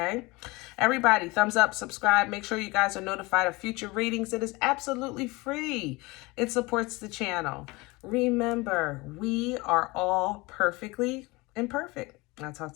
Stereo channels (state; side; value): quieter; right; 23.7 dB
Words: Everybody, thumbs up, subscribe. Make sure you guys are notified of future readings. It is absolutely free. It supports the channel. Remember, we are all perfectly imperfect. I'll talk